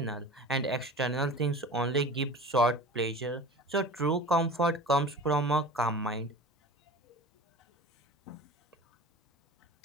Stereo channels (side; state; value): both; normal; correlation 0.37